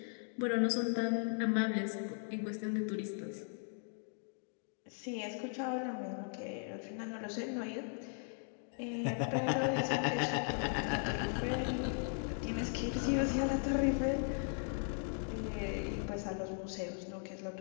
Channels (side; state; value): right; silent; 53 dB below the other